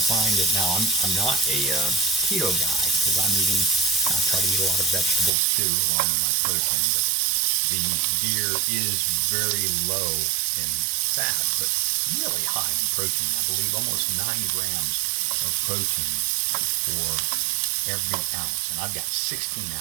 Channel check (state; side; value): drops out; left; at 5.3 s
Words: find it now. I'm not a keto guy because I try to eat a lot of vegetables too, along with my protein. But the deer is very low in fat, but really high in protein. I believe almost 9 grams of protein for every ounce, and I've got 16